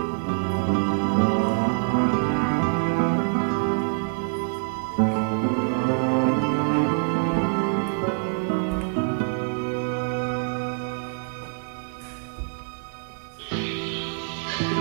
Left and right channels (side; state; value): left; silent; 62 dB below the other